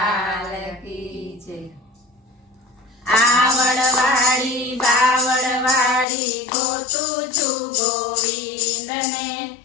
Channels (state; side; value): drops out; right; at 6.1 s